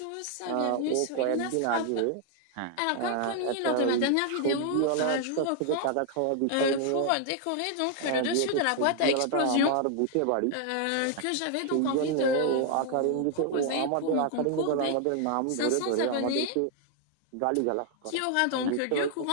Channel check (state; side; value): different; both; correlation 0.00